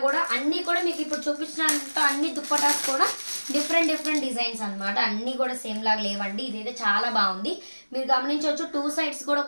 కూడా అన్ని కూడా మీకు ఇప్పుడు చూపించినంత అన్ని దుప్పటాస్ కూడా డిఫరెంట్ డిజైన్స్ అనమాట. అన్ని కూడా సేమ్ లాగా లేవండి. ఇదైతే చాలా బాగుంది. మీరు గమనించవచ్చు, 2 సైడ్స్ కూడా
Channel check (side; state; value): both; inverted; correlation -1.00